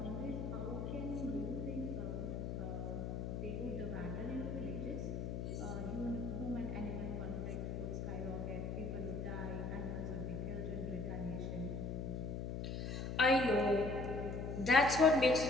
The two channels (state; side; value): noise; left; hum, 3 dB below the sound